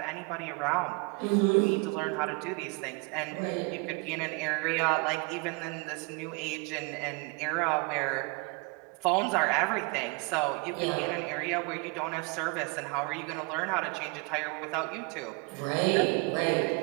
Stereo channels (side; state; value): left; quieter; 29.8 dB